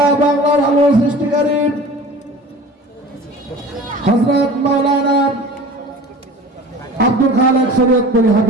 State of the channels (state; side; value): normal; both; correlation 0.40